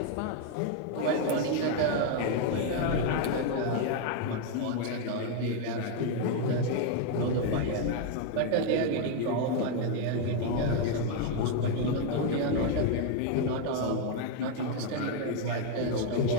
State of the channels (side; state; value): both; different; correlation 0.01